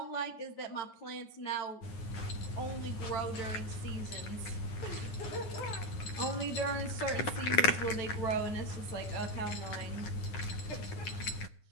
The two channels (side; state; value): right; late; 9.7 ms